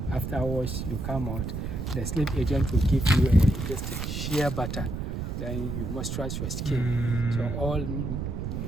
afterwards you come out. The slave agent will give you just a shea butter. Then you moisturize your skin. So all in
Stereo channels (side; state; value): right; noise; rumble, 4 dB below the sound